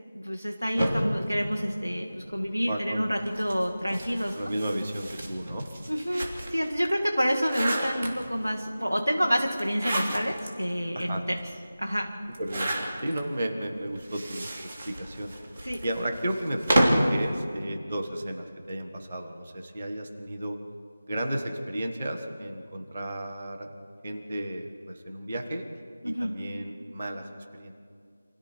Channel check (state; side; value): inverted; both; correlation -0.95